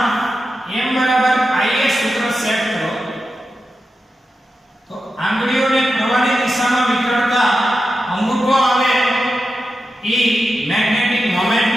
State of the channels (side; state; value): both; normal; correlation 0.90